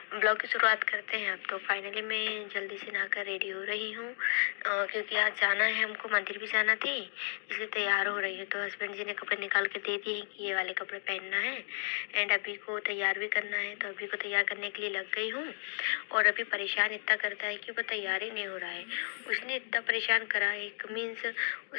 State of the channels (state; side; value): silent; right; 56 dB below the other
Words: ब्लॉग की शुरुआत करते हैं अब। तो फाइनली मैं जल्दी से नहाकर रेडी हो रही हूँ क्योंकि आज जाना है, हमको मंदिर भी जाना थी, इसलिए तैयार हो रही हूँ। तो हस्बैंड जी ने कपड़े निकाल के दे दिए कि ये वाले कपड़े पहनना है एंड अभी को तैयार भी करना है। तो अभी को तैयार करने के लिए लग गई हूँ और अभी परेशान इतना करता है कि वो तैयार ही नहीं हो रहा है। उसने इतना परेशान करा, एक मीन्स